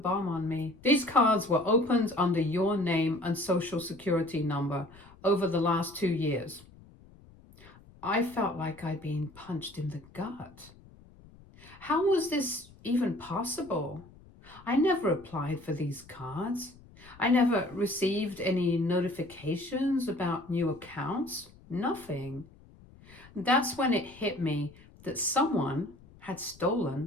on me. These cards were opened under your name and social security number over the last 2 years. I felt like I'd been punched in the gut. How was this even possible? I never applied for these cards. I never received any notifications about new accounts. Nothing. That's when it hit me that someone had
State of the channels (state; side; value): noise; left; rumble, 23 dB below the sound